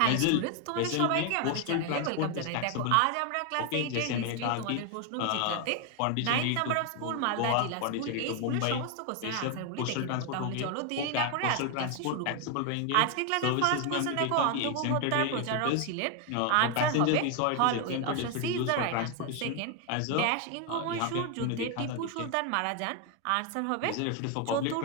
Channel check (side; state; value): both; different; correlation 0.01